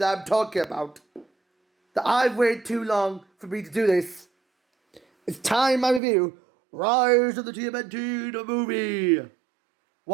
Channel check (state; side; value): drops out; left; at 6.0 s